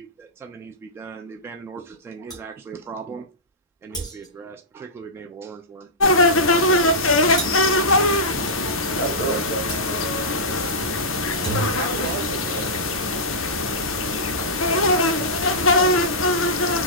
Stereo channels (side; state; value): both; normal; correlation -0.15